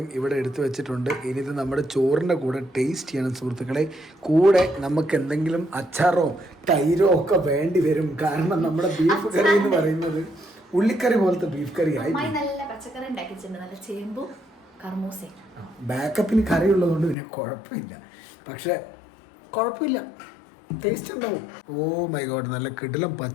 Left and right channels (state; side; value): drops out; right; at 17.2 s